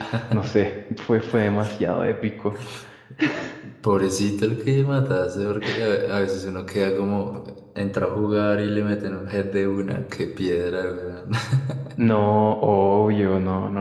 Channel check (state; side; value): identical; both; correlation 1.00